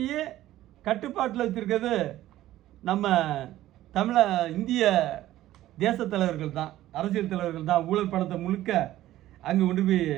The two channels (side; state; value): left; quieter; 14.4 dB